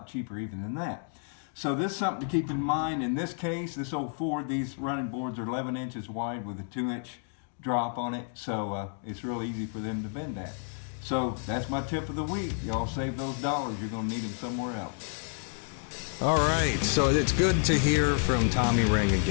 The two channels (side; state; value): right; silent; 56 dB below the other